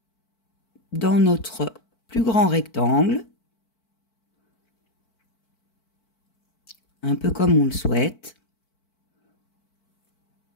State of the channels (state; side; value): late; right; 4.5 ms